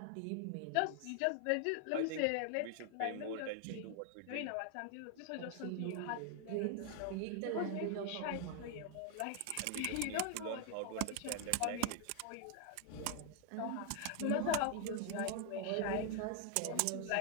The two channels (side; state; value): both; different; correlation 0.00